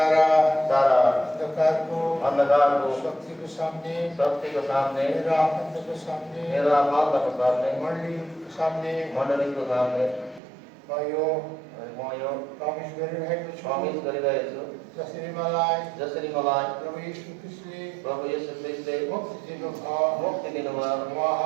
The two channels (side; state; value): left; drops out; at 10.4 s